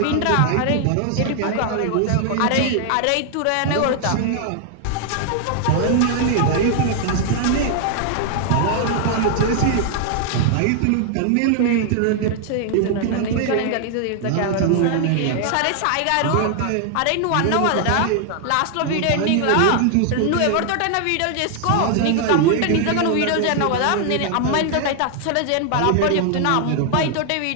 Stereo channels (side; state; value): both; different; correlation 0.00